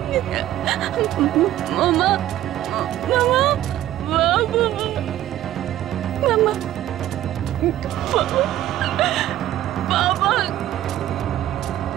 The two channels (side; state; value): left; quieter; 13.2 dB